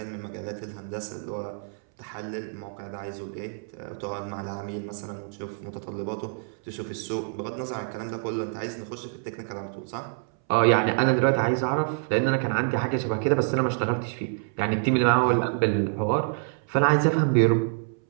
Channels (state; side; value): silent; left; 60 dB below the other